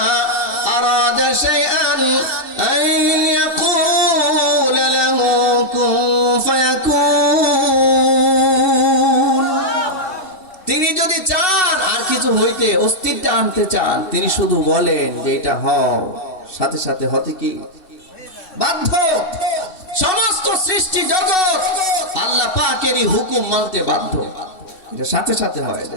আরাদা শাইআন আন ইয়াকুলা লাহু কুন ফায়াকুন, তিনি যদি চান আর কিছু হইতে, অস্তিত্ব আনতে চান, তিনি শুধু বলেন যে এটা হও, সাথে সাথে হতে কি বাধ্য। সমস্ত সৃষ্টি জগৎ আল্লাহ পাকেরই হুকুম মানতে বাধ্য, এটা সাথে সাথে হয়ে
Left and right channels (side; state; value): right; late; 3.1 ms